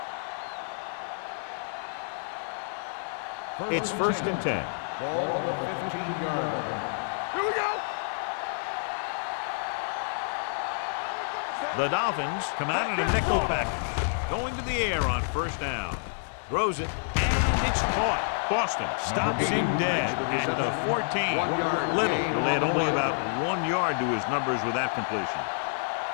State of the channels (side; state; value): right; silent; 57 dB below the other